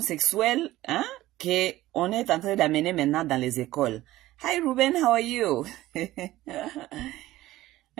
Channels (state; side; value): quieter; left; 16.2 dB